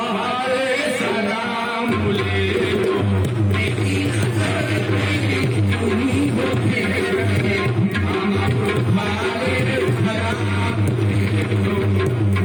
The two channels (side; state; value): both; identical; correlation 1.00